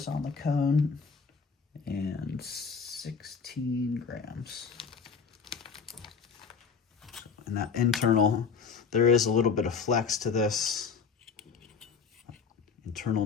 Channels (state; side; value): quieter; right; 5.7 dB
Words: on the cone and 16 grams. And that internal, there is a little bit of flex to this. Internal